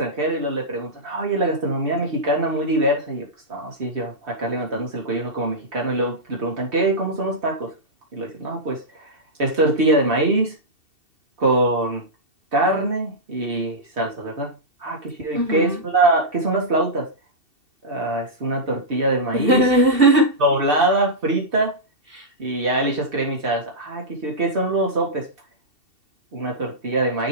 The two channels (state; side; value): late; left; 2.7 ms